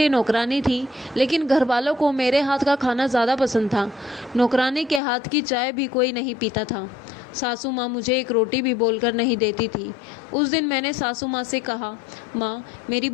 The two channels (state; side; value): drops out; right; at 5.0 s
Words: नौकरानी थी, लेकिन घर वालों को मेरे हाथ का खाना ज़्यादा पसंद था। नौकरानी के हाथ की चाय भी कोई नहीं पीता था। सासू माँ मुझे एक रोटी भी बोलकर नहीं देती थी। उस दिन मैंने सासू माँ से कहा, माँ मेरी